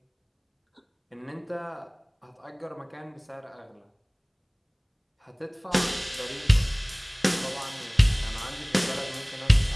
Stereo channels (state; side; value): identical; both; correlation 1.00